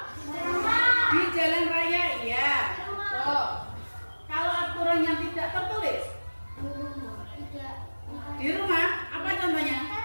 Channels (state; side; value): inverted; both; correlation -1.00